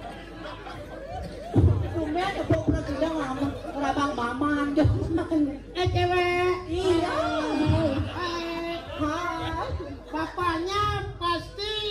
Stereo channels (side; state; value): both; identical; correlation 1.00